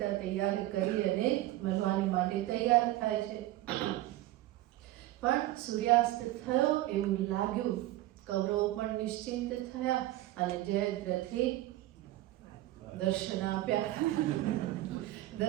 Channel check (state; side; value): quieter; left; 16.1 dB